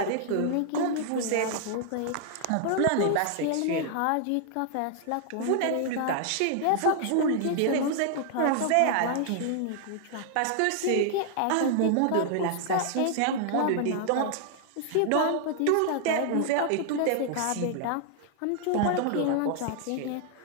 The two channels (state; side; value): different; both; correlation -0.01